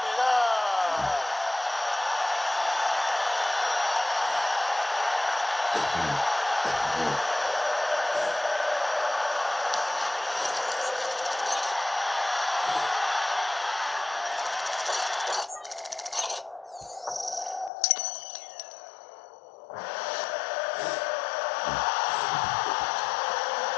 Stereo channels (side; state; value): right; drops out; at 17.7 s